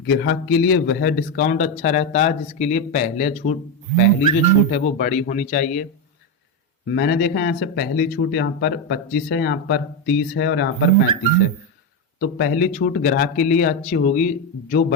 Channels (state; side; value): normal; both; correlation 0.09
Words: के लिए वह डिस्काउंट अच्छा रहता है जिसके लिए पहली जो छूट है वो बड़ी होनी चाहिए। मैंने देखा यहाँ से पहली छूट यहाँ पर 25 है, यहाँ पर 30 है और यहाँ पर 35 है। तो पहली छूट ग्राहक के लिए अच्छी होगी जो